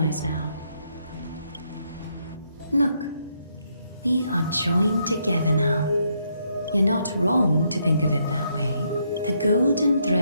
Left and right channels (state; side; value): inverted; both; correlation -0.75